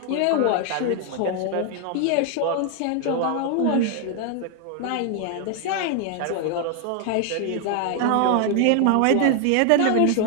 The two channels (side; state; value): both; different; correlation 0.00